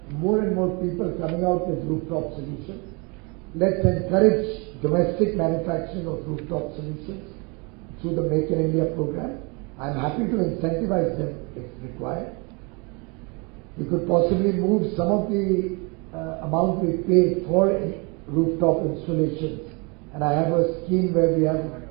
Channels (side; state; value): left; quieter; 30.6 dB